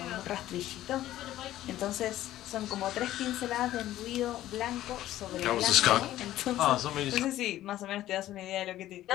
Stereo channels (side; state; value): right; quieter; 14.0 dB